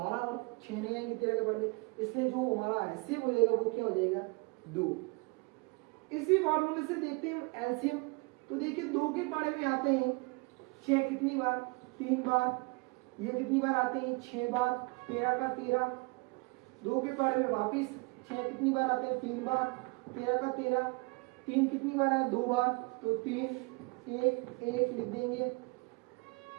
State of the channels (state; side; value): quieter; left; 28.7 dB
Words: और 6 नहीं आएंगे 13 के बारे में, इसलिए जो हमारा HCF हो जाएगा वो क्या हो जाएगा, 2। इसी फॉर्मूले से देखते हैं LCM। तो देखिए 2 के पाड़े में आते हैं 6 कितनी बार, 3 बार। ये कितनी बार आते हैं, 6 बार। 13 का 13, 2 के पाड़े में वापिस 6 कितनी बार आते हैं, 3 बार। 13 का 13, 3 कितनी बार आए, 2 बार। तो 3, 1, 1 लिख देंगे।